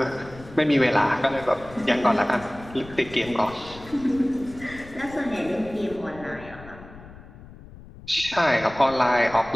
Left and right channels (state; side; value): noise; left; rumble, 18 dB below the sound